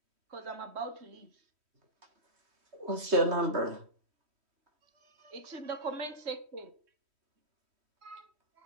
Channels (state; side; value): late; left; 3.1 ms